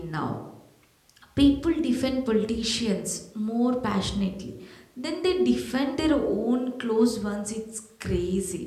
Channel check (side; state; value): both; identical; correlation 1.00